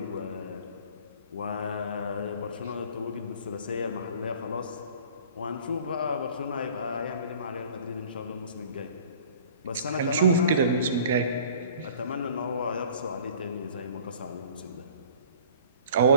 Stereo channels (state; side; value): inverted; both; correlation -0.49